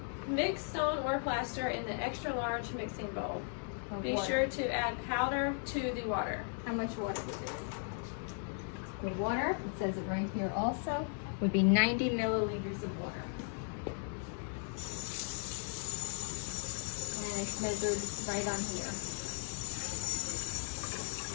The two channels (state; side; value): silent; right; 53 dB below the other